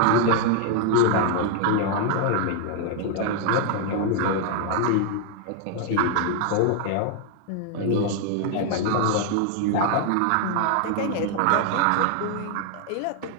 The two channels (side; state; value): both; different; correlation 0.00